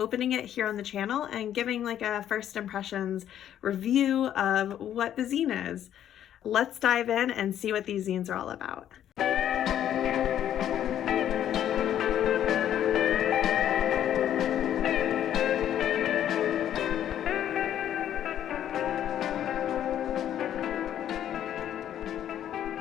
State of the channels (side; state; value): right; quieter; 10.7 dB